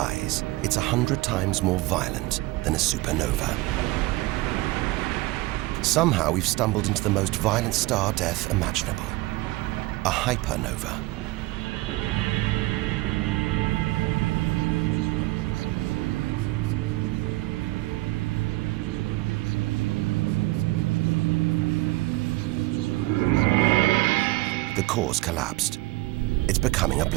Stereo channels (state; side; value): quieter; left; 20.2 dB